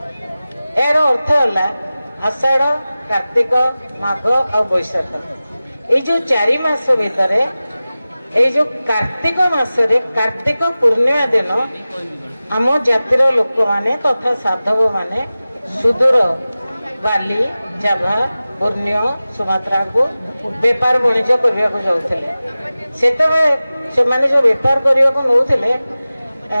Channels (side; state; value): both; inverted; correlation -0.96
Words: ଏହାର ଅର୍ଥ ହେଲା ଆଷାଢ, କାର୍ତ୍ତିକ, ମାଘ ଆଉ ବୈଶାଖ, ଏଇ ଯୋଉ 4 ମାସ ଭିତରେ ଏଇ ଯୋଉ କାର୍ତ୍ତିକ ମାସରେ କାର୍ତ୍ତିକ ପୂର୍ଣ୍ଣିମା ଦିନ ଆମ ଜାତିର ଲୋକମାନେ ତଥା ସାଧବ ମାନେ ସୁଦୂର ବାଲି, ଜାଭା, ପୂର୍ଣ୍ଣିୟ, ସୁମାତ୍ରାକୁ ବେପାର ବାଣିଜ୍ୟ କରିବାକୁ ଯାଉଥିଲେ। ସେତେବେଳେ ସେମାନେ ଯୋଉ ବେପାର କରିବାକୁ ନଉଥିଲେ,